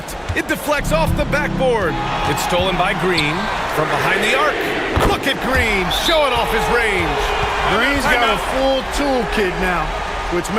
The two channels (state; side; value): identical; both; correlation 1.00